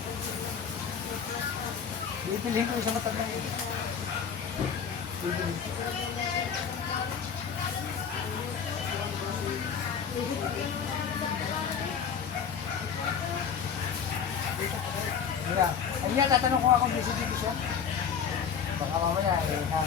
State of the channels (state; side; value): quieter; right; 7.1 dB